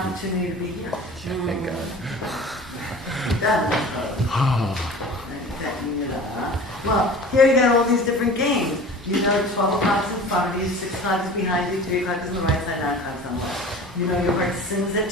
to be here. Thank God. Well, here you got all these different games. You know 12 o'clock is in front of you, 6 o'clock is behind you, 3 o'clock is on the right side, 9 o'clock is on the left. You know your heart sings at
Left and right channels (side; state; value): both; normal; correlation 0.40